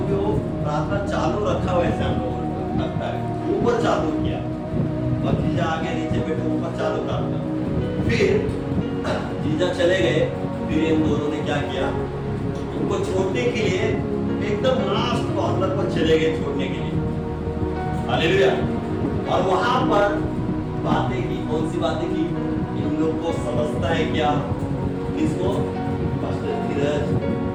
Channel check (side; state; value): both; identical; correlation 1.00